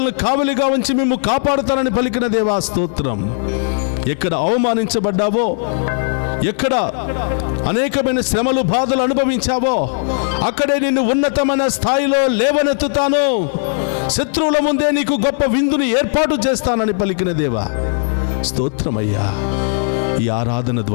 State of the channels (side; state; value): right; silent; digital silence